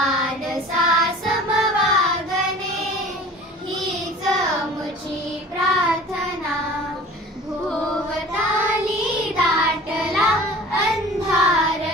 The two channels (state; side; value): normal; both; correlation 0.44